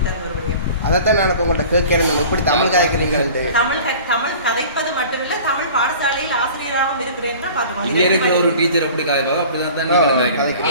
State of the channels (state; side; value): inverted; both; correlation -0.43